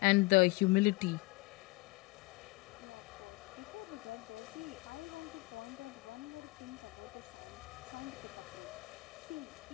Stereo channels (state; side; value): quieter; right; 23.1 dB